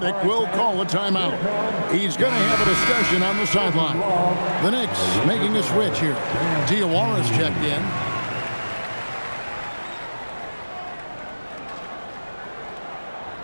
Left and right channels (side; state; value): both; inverted; correlation -1.00